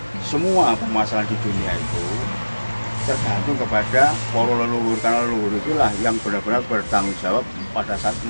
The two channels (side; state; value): both; inverted; correlation -1.00